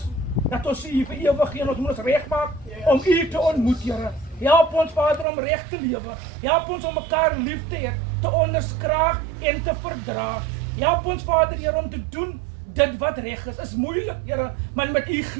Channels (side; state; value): left; drops out; at 5.2 s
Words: dat ons U vir ewig en ons moet ons regmaak om U te ontmoet Here. Help ons Vader om reg te lewe. Help ons om mekaar lief te hê, te onderskraag en te verdra. Help ons Vader Here om te doen dit wat reg is moeilik Here, maar met U